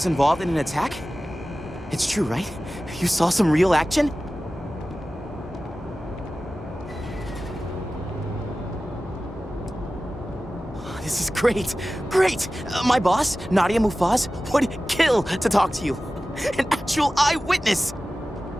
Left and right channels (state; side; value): normal; both; correlation 0.95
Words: involved in an attack? It's true, right? You saw some real action? This is great. Great! My boss, Nadia Mufaz, would kill to talk to you. An actual eyewitness!